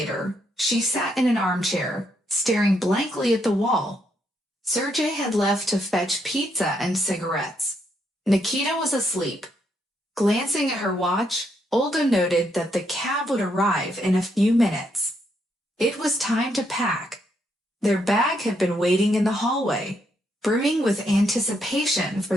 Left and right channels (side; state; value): both; normal; correlation 0.76